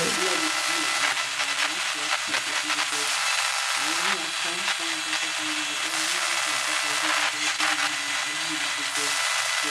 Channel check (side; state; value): both; identical; correlation 1.00